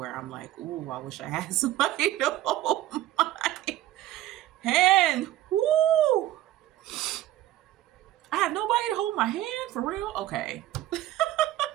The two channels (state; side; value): quieter; left; 14.4 dB